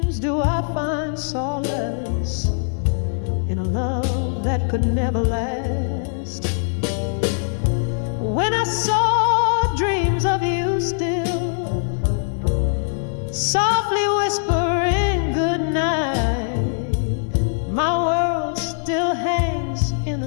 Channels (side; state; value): right; silent; digital silence